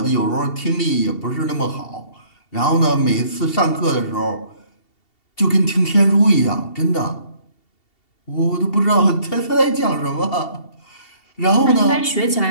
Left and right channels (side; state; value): right; late; 2.7 ms